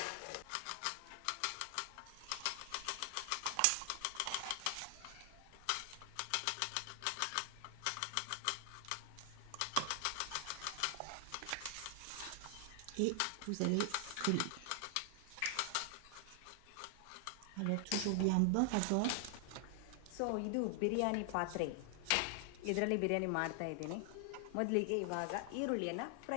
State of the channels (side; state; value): both; different; correlation 0.00